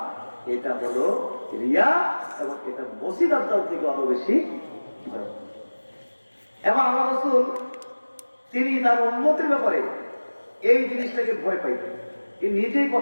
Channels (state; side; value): inverted; both; correlation -1.00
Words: এটা হলো রিয়া। এবং এটা মসিহ দাজ্জাল থেকে আরো বেশি ভয়ঙ্কর। এবং আল্লাহ রাসূল তিনি তার উম্মতের ব্যাপারে এই জিনিসটাকে ভয় পাইতেন। তিনি নিজেই